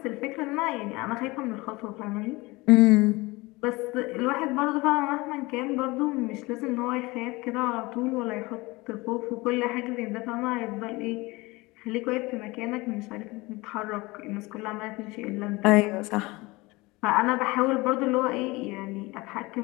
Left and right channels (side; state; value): right; quieter; 22.7 dB